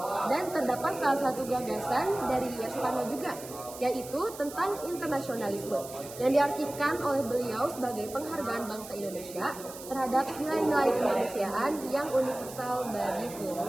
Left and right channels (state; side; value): noise; right; hiss, 14 dB below the sound